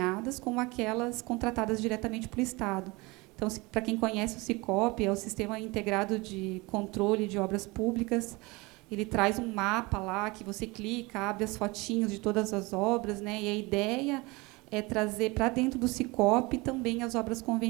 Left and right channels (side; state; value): left; quieter; 24.4 dB